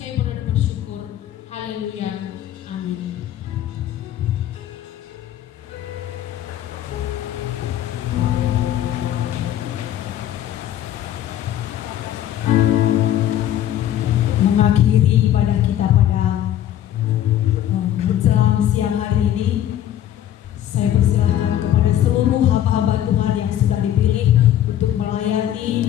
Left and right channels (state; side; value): quieter; right; 11.7 dB